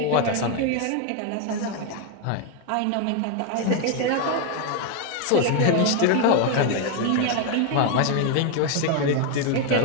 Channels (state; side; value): different; both; correlation 0.01